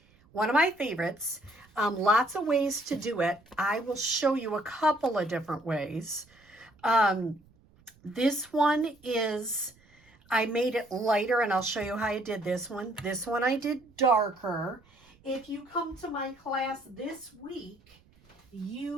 One of my favorites. Lots of ways to do it. I will show you a couple of different ways. This one is, I made it lighter, and I'll show you how I did this one. This one I did darker. If you come to my class this week,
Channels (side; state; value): right; noise; rumble, 30 dB below the sound